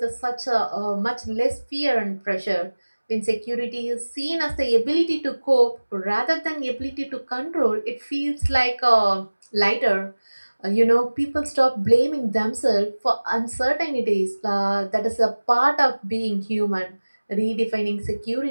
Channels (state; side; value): inverted; both; correlation -1.00